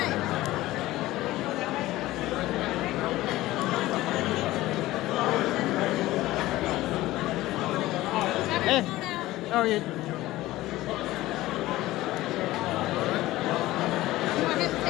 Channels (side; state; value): right; quieter; 17.0 dB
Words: Hey, how are you?